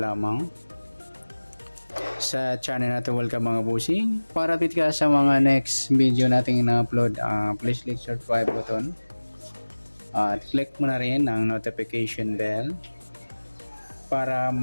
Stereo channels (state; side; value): inverted; both; correlation -1.00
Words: sa channel natin. Welcome mga busing. Para update ka sa mga next video nating ina-upload, please click subscribe button at click mo na rin ang notification bell para